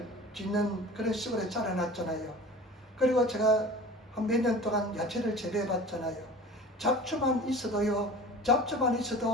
짓는 그런 시골에 자라났잖아요. 그리고 제가 한 몇 년 동안 야채를 재배해 봤잖아요. 잡초만 있어도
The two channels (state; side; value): normal; both; correlation 0.39